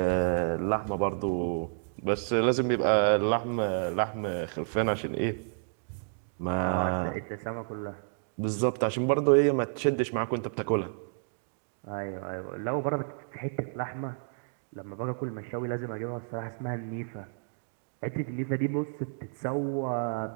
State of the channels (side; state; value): left; silent; digital silence